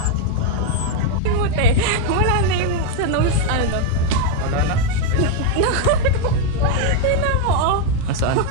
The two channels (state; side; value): different; both; correlation 0.01